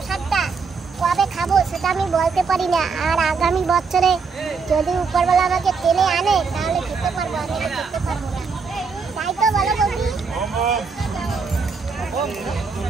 কবে খাবো সেটা আমি বলতে পারি না, আর আগামী বছরে যদি উপরবেলা আমাকে টেনে আনে তাহলে খেতে পারবো, আমি খেতে পারবো না, তাই তো বলো বন্ধু?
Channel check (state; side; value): quieter; left; 5.1 dB